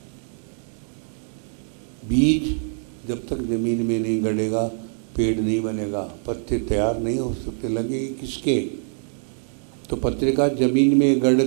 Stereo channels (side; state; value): left; silent; digital silence